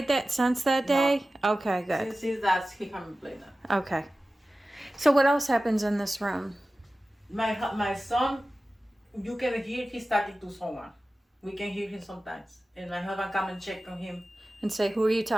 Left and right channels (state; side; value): normal; both; correlation 0.95